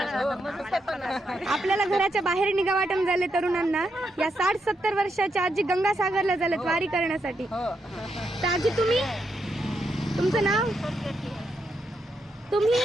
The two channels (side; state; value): both; normal; correlation 0.81